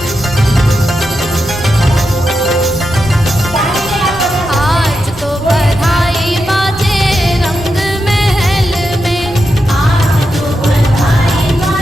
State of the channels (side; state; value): right; noise; rumble, 16 dB below the sound